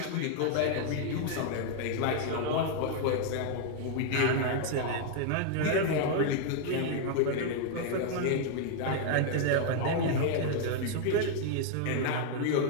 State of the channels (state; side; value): different; both; correlation 0.00